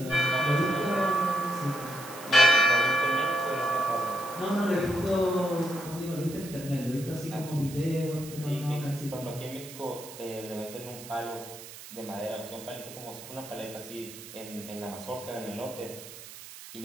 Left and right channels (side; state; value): right; noise; hiss, 14 dB below the sound